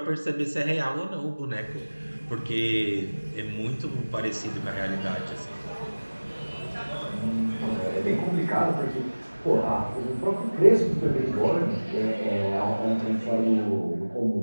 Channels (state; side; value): inverted; both; correlation -1.00